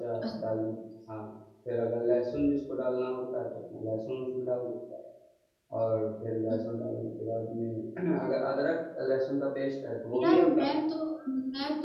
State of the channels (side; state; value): both; identical; correlation 1.00